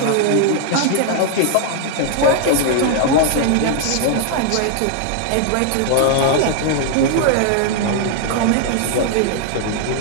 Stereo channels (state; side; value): different; both; correlation 0.00